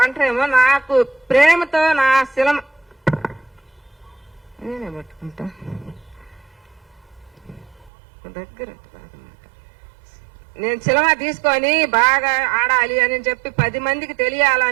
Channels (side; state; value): left; drops out; at 7.9 s